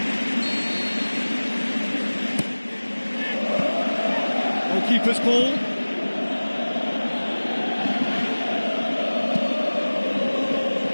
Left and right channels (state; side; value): inverted; both; correlation -1.00